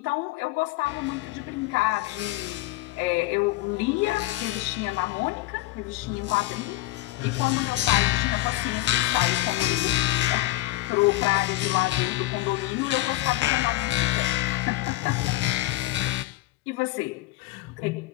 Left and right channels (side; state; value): right; quieter; 17.3 dB